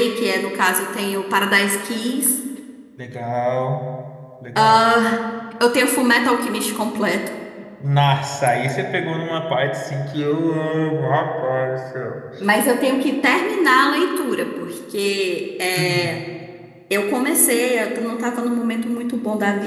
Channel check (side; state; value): both; identical; correlation 1.00